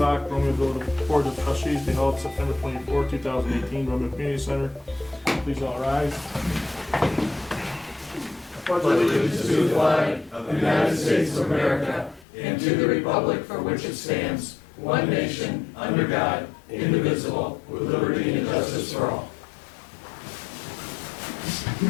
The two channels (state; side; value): drops out; right; at 12.2 s